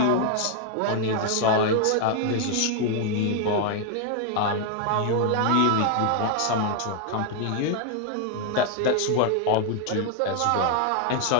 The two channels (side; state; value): both; different; correlation 0.00